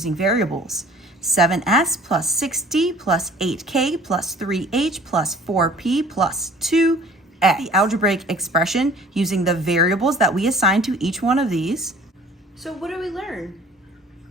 variables. 7S plus 6D plus 8K plus 3H plus 4P plus 2X. The algebraic expression using the variables that we assigned to each one of these. So what do we learn?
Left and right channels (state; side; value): normal; both; correlation 0.50